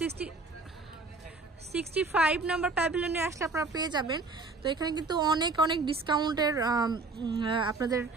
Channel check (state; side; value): quieter; left; 3.7 dB